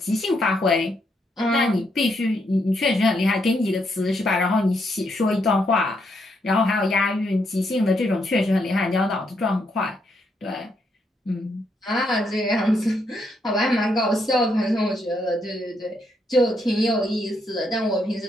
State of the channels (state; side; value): normal; both; correlation 0.77